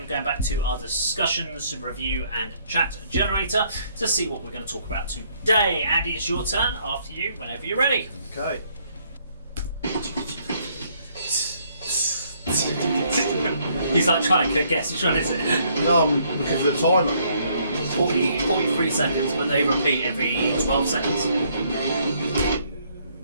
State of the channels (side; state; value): both; inverted; correlation -0.67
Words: going back to our discussions, review and chat generator to see what we're going to talk about today. Andy, it's your turn. After you, whenever you're ready. Okay. He's like trying to guess. Which one is it? No, I'm looking for the timer. 43 seconds, but they repeat every 12 seconds.